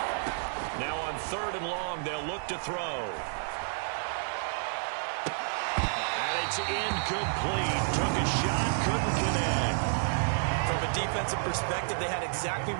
Now on 3rd and long, they'll look to throw. And it's incomplete. Took a shot, couldn't connect. From a defensive perspective, they had exactly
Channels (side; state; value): left; silent; digital silence